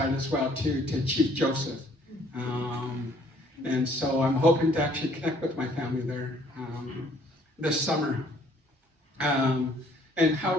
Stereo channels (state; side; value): normal; both; correlation 0.60